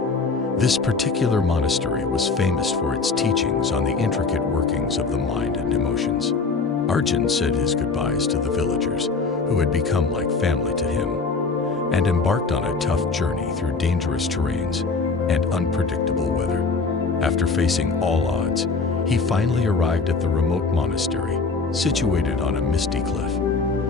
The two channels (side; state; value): right; quieter; 4.3 dB